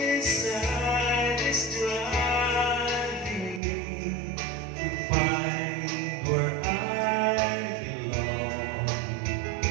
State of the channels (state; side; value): drops out; left; at 3.6 s